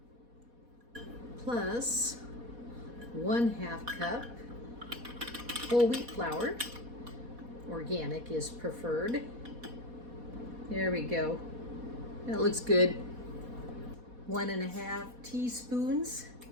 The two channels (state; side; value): late; left; 4.1 ms